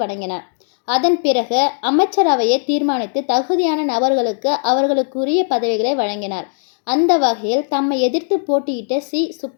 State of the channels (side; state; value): right; silent; digital silence